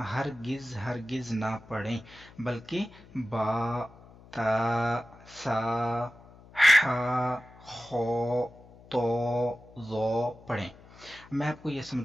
ہرگز نہ پڑھیں، بلکہ با، تا، سا، حا، خو، تو، زو پڑھیں. میں آپ کو یہ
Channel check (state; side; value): noise; left; hum, 22 dB below the sound